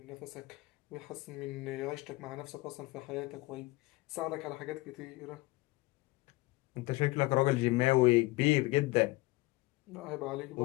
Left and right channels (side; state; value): right; quieter; 21.3 dB